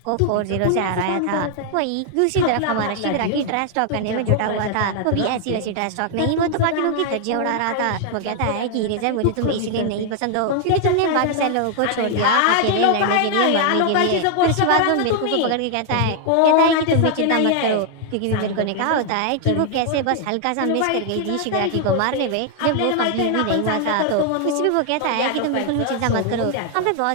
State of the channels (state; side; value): different; both; correlation 0.00